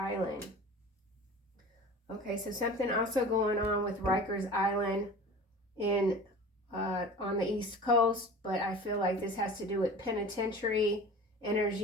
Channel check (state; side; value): normal; both; correlation 0.38